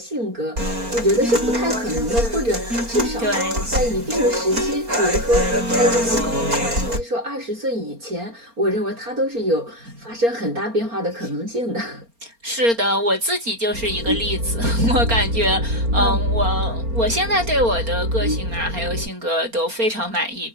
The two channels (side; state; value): left; late; 4.3 ms